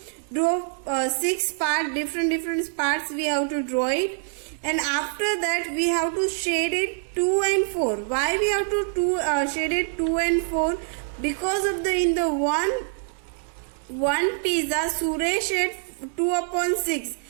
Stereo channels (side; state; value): left; silent; digital silence